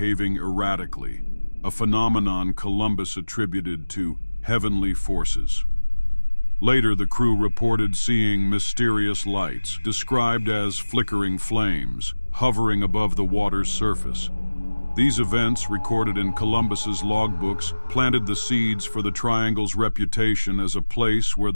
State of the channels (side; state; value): both; inverted; correlation -1.00